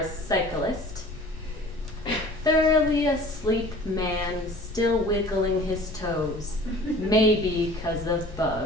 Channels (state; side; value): noise; left; rumble, 14 dB below the sound